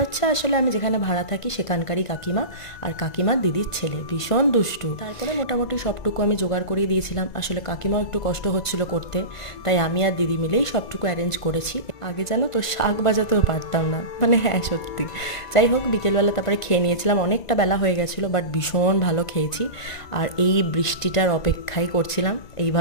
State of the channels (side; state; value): right; late; 2.0 ms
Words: হচ্ছে আসলে আমি যেখানে ভাড়া থাকি সেখানকারই কাকিমা, আর কাকিমার দিদির ছেলে ভীষণ দুষ্টু। তারপরে মোটামুটি সবটুকু আমি জোগাড় করিয়ে দিয়েছিলাম। আসলে কাকিমাও একটু কষ্ট হচ্ছিল করতে, তাই আমি আর দিদি মিলেই সবটুকু অ্যারেঞ্জ করেছি। আগে জানো তো শাক বাজাতেও পারতাম না, মানে হ্যাঁ সত্যি। যাই হোক, বিকেলবেলা তারপরে খেয়ে নিয়েছিলাম, অনেকটা বেলা হয়ে গেছিলো, বাট ভীষণ ভালো খেয়েছি। আর এই বৃষ্টিটার অপেক্ষাই করছিলাম,